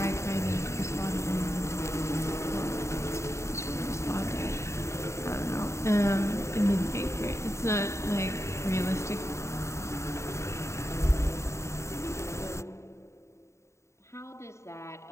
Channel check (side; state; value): right; late; 0.14 ms